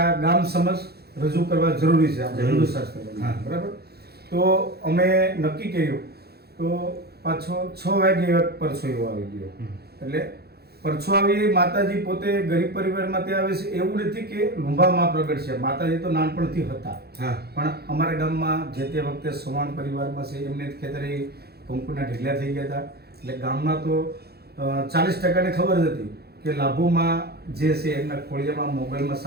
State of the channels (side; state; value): left; late; 0.46 ms